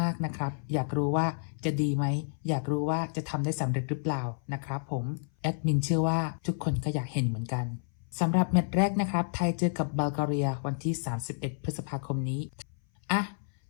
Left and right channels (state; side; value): silent; right; 58 dB below the other